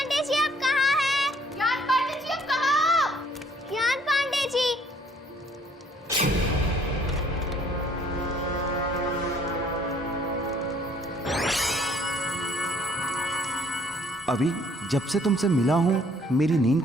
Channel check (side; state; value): both; normal; correlation 0.61